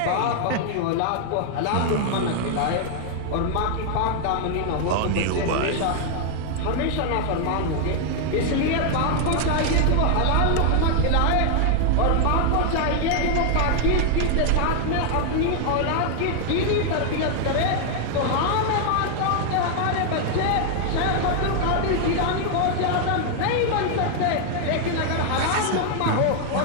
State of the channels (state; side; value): different; both; correlation 0.00